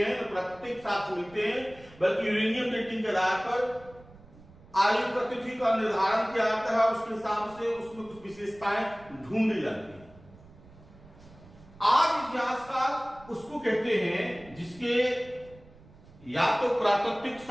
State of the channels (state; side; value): noise; right; rumble, 23 dB below the sound